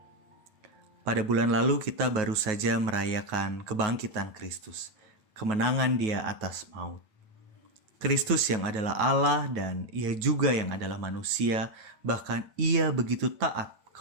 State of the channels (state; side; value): late; left; 9.3 ms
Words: Pada bulan lalu kita baru saja merayakan kebangkitan Kristus, kemenangan Dia atas maut. Kristus yang adalah Allah dan Ia juga yang adalah manusia, bahkan Ia begitu taat